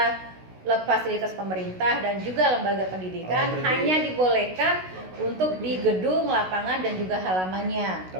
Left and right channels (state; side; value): late; left; 16 ms